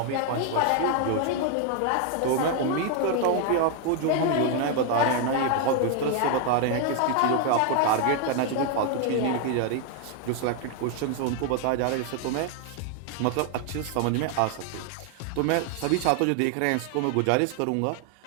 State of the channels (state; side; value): different; both; correlation 0.00